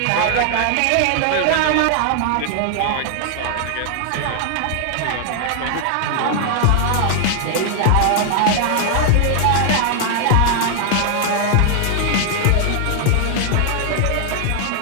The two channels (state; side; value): different; both; correlation 0.00